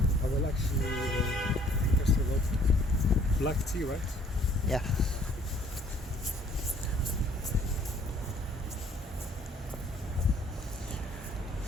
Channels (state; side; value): normal; both; correlation 0.59